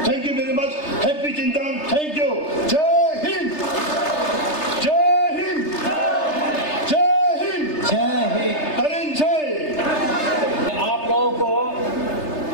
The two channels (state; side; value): late; right; 3.3 ms